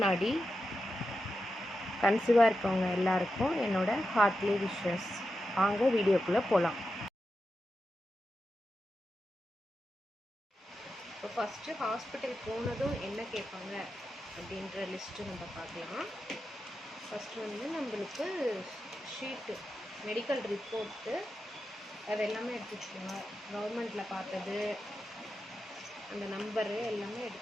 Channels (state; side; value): normal; both; correlation 0.89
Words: கன்சீவாக இருக்கவங்க எல்லாருக்கும் என்னோட ஹார்ட்லி விஷஸ். வாங்க வீடியோக்குள்ளே போகலாம். இப்போ ஃபஸ்ட்டு ஹாஸ்பிட்டல் போனதும் என்ன கேட்பாங்க அப்படின்ற லிஸ்ட்டு நம்ம பார்க்கலாம். ஃபஸ்ட்டு வந்து நம்மளுக்கு ஷீட்டு, மெடிக்கல் ரிப்போர்ட்டு, அது எல்லாமே எடுத்து வச்சுக்கோங்க. கவர்மெண்ட்டில் பார்த்தது, அந்த நம்பரு எல்லாமே